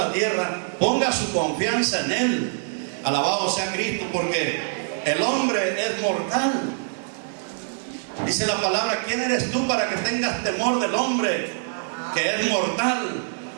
tierra ponga su confianza en Él. Alabado sea Cristo, porque el hombre es mortal. Dice la palabra: ¿quién eres tú para que tengas temor del hombre que es mortal,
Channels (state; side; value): silent; left; 56 dB below the other